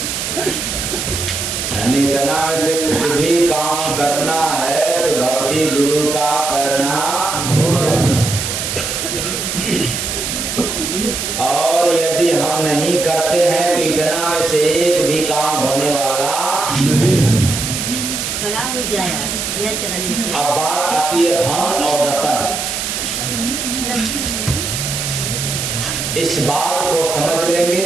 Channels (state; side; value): noise; right; hiss, 3 dB below the sound